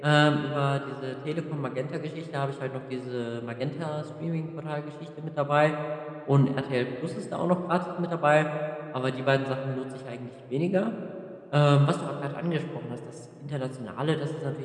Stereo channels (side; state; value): both; identical; correlation 1.00